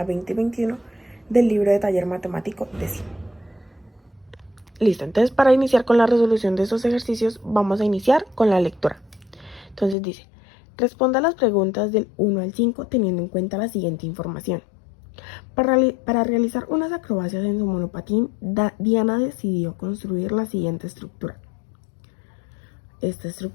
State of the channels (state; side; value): drops out; right; at 10.0 s